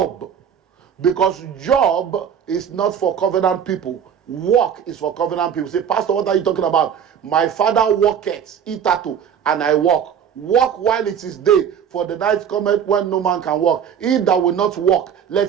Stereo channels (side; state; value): left; quieter; 8.2 dB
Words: because job is not for covenant people. Work is for covenant people. Say, Pastor, what are you talking about? My father worketh, itato, and I work. Work while it is day, for the night cometh when no man can work. He that will not work,